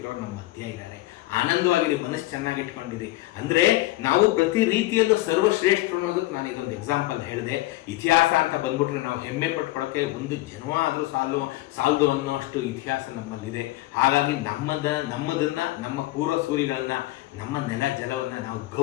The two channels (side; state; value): right; quieter; 17.9 dB